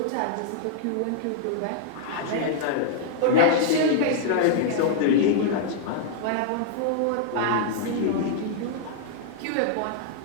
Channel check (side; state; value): both; different; correlation -0.01